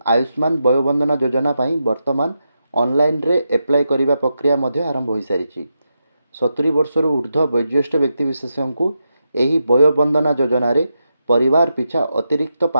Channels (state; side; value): inverted; both; correlation -0.86